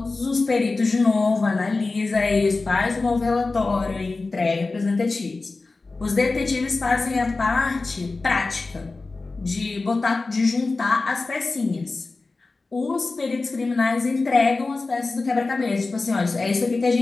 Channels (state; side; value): quieter; right; 3.6 dB